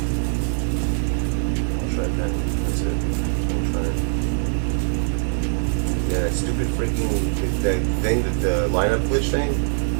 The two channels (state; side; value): silent; left; digital silence